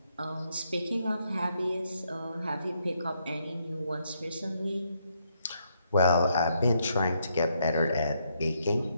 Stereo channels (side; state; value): both; inverted; correlation -0.75